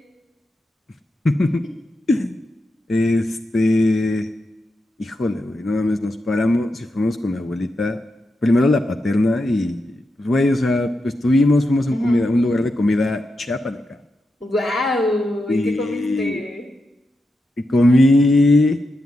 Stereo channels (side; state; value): both; normal; correlation 0.87